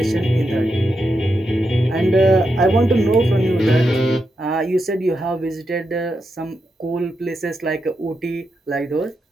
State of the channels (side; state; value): both; normal; correlation 0.85